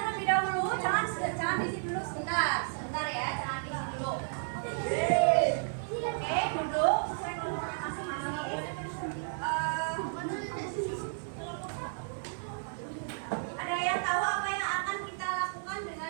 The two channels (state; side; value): silent; left; 56 dB below the other